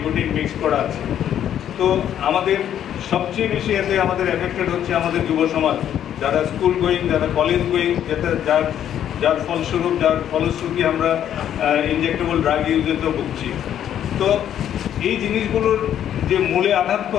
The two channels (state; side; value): quieter; right; 10.3 dB